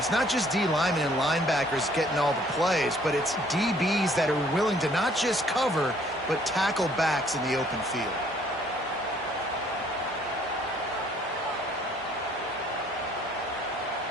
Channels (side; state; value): both; normal; correlation 0.61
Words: not just D linemen and linebackers getting all the plays, but it's DBs that are willing to not just cover, but tackle backs in the open field.